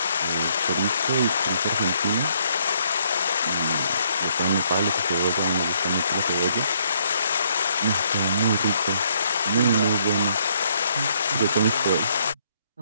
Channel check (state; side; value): inverted; both; correlation -0.69